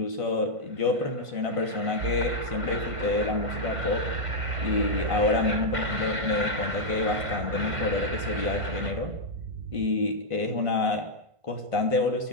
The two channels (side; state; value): left; late; 1.5 ms